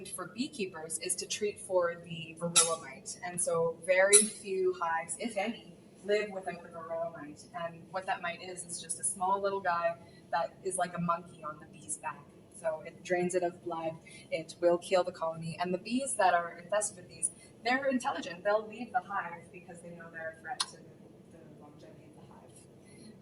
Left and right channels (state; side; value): identical; both; correlation 1.00